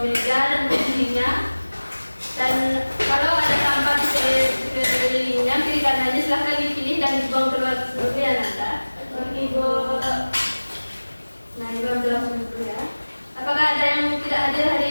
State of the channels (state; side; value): inverted; both; correlation -1.00